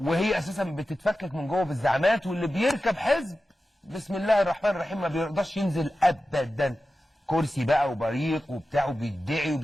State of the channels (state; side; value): normal; both; correlation 0.93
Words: أساسا بتتفكك من جوه بالزعامات، واللي بيركب حزب بسم الله الرحمن الرحيم ما بيرضاش ينزل أبدا، كرسي بقى وبريق وبتاع وبيدعي